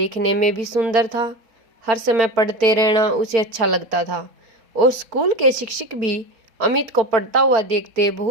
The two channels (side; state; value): left; late; 4.4 ms